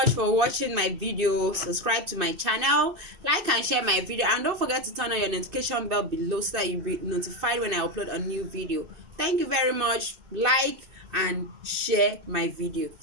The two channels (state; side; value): late; left; 2.7 ms